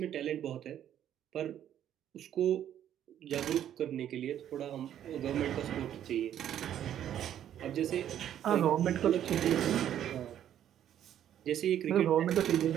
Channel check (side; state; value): left; quieter; 10.6 dB